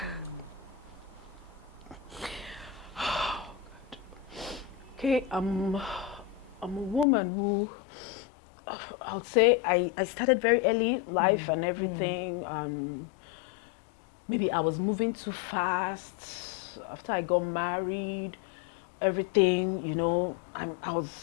okay, I'm a woman who, I would say I started very early life and everything. Maybe I was moving too fast. After I got married, everything, you know, I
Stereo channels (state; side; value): drops out; right; at 7.1 s